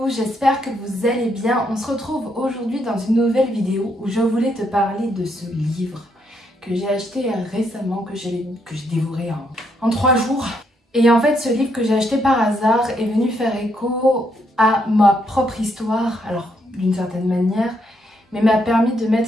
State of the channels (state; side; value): normal; both; correlation 0.75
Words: j'espère que vous allez bien. On se retrouve aujourd'hui dans une nouvelle vidéo où je voulais te parler de ce livre que j'ai acheté récemment, que j'ai dévoré en 3 jours. Et en fait, ce livre que j'ai acheté par hasard est venu faire écho à ma propre histoire, alors d'une certaine manière, mais m'a permis de